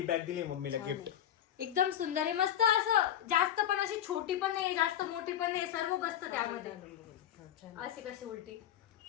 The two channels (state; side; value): quieter; right; 10.8 dB